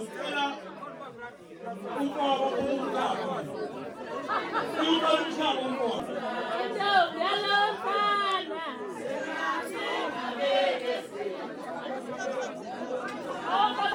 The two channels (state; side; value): identical; both; correlation 1.00